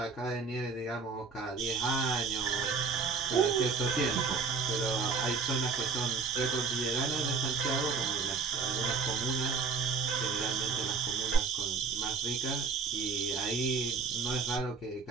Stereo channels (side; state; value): left; quieter; 4.9 dB